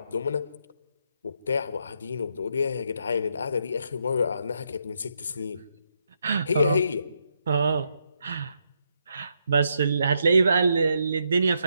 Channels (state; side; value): inverted; both; correlation -0.79